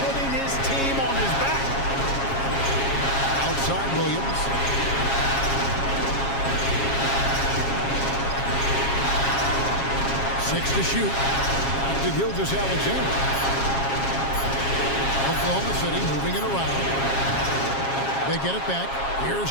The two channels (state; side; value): late; right; 7.4 ms